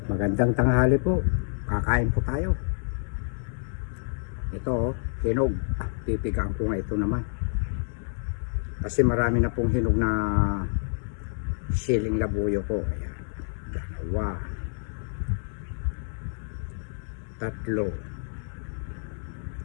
Magandang tanghali po. Kakain po tayo. Ito, hinog. Pipigaan ko nga ito naman. Kasi marami na pong hinog na siling labuyo ko. Ayan. Dalawa. Tatlo.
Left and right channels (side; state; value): right; silent; 59 dB below the other